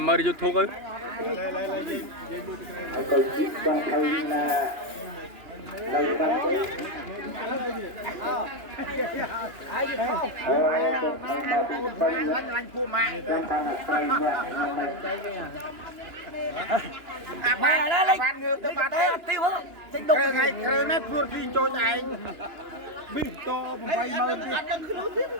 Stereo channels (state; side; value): late; left; 2.9 ms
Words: មើល YouTube ទៅទៅជីកបងថៃណានៅបាត់ទៅឡាញ់ពូម៉ាក់ម៉ែណាលេងងើទៅបាត់ទៅអត់ទីហ្នឹងចេញដុកថ្ងៃគ្រឿងនេះព្រួតទីចូលឯងប៊ីត80000ទៀ